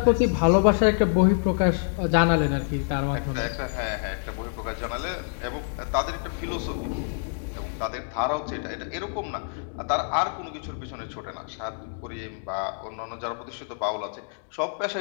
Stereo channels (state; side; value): silent; right; digital silence